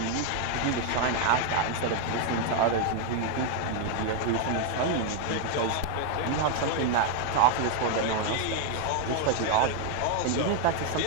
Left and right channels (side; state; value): both; different; correlation 0.00